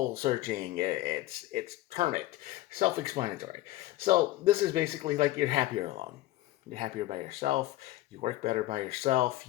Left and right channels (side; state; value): right; quieter; 16.5 dB